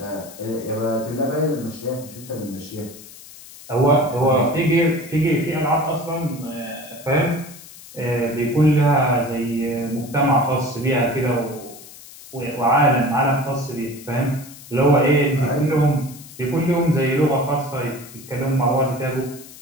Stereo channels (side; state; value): left; noise; hiss, 18 dB below the sound